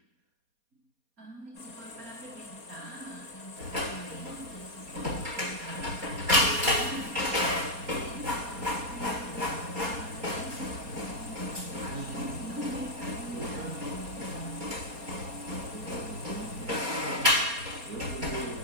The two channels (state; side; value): late; left; 4.2 ms